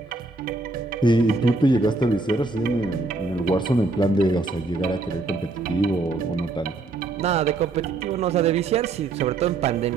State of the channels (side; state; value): left; quieter; 3.3 dB